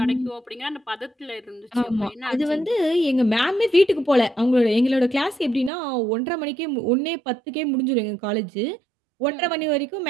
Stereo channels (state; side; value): drops out; left; at 5.7 s